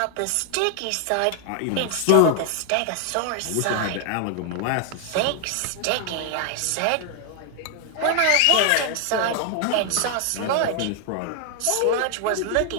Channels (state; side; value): different; both; correlation 0.00